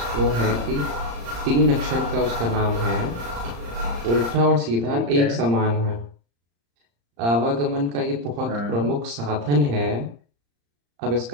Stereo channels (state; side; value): late; left; 35 ms